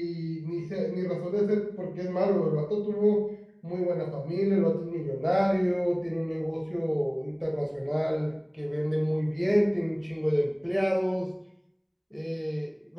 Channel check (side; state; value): both; identical; correlation 1.00